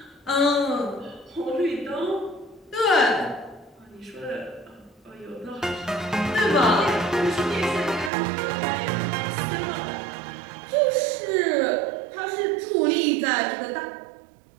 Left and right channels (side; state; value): left; drops out; at 8.1 s